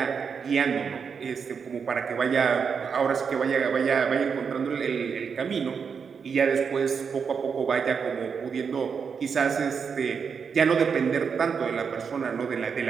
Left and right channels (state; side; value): quieter; left; 6.2 dB